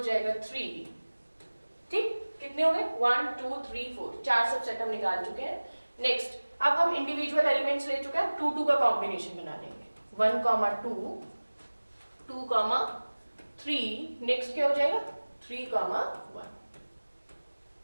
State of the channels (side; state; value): both; inverted; correlation -1.00